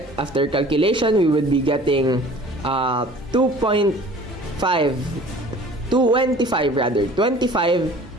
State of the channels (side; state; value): both; normal; correlation 0.48